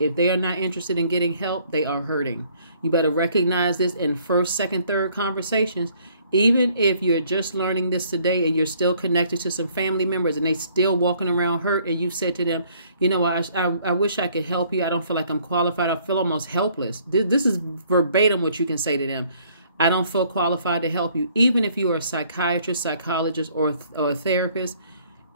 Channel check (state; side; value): inverted; both; correlation -0.62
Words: they are not interested in getting help, they are hurting. You better recognize this in first, second, third conversations. Even if you're just learning this today and you're still connected to some family members and they still walking around hurt, and you said to them, I wish I could help you. I don't feel like I'm qualified. I feel almost helpless. This is verbatim what you can say to them. I don't feel qualified to help you. Even if you are a psychiatrist, psychologist, or a therapist,